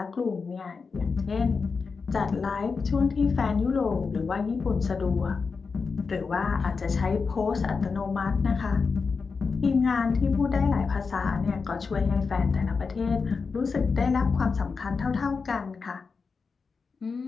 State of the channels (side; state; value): right; quieter; 4.9 dB